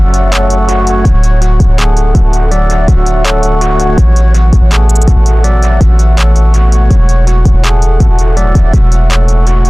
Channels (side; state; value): both; normal; correlation 0.98